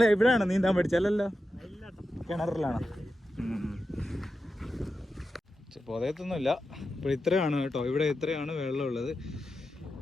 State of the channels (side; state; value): both; normal; correlation 0.90